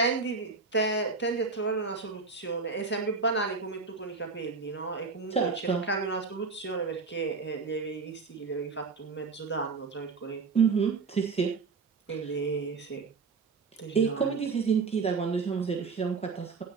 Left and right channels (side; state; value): left; quieter; 4.7 dB